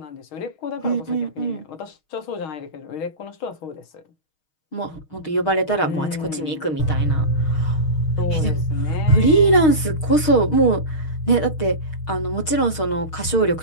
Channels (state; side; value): late; right; 6.4 ms